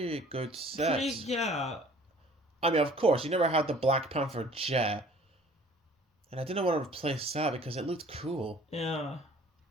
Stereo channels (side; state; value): both; normal; correlation 0.52